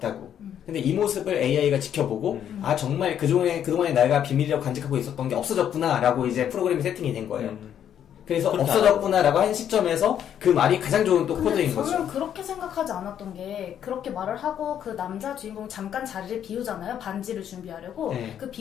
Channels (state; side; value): quieter; right; 9.6 dB